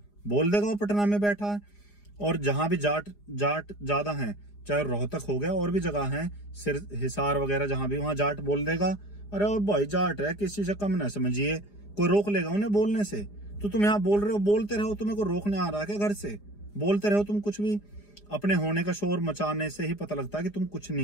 बोल देगा वो पटना में बैठा है। और जहां भी जाट ज्यादा हैं, चाहे रोहतक हो गया और भी जगह हैं, हिसार वगैरह जहां भी, वहां जाट बोल देगा अरे वो भाई जाट है, किसी से कम ना समझिए, कोई रोक लेगा उन्हें बोलने से। तो तुम यहाँ बोल रहे हो, बोलते रहो, तुम्हें को रोकने आ रहा है क्या घर से? बोलते रहो तुम कुछ भी, अपने होने का शोर मचाने से ही पता लगता है कि तुम कुछ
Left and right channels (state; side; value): late; right; 4.9 ms